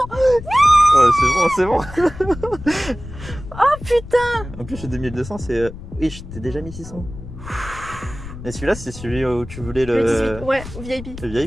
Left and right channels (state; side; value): noise; left; rumble, 13 dB below the sound